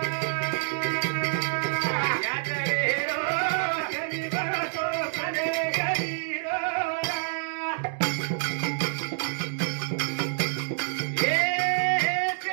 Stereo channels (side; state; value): left; silent; digital silence